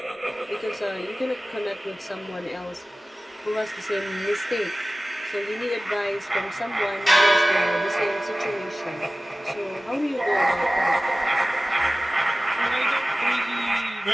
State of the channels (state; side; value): normal; both; correlation 0.97